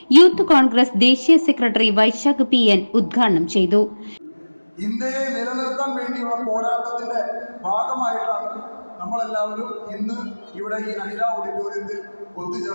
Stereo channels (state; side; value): inverted; both; correlation -1.00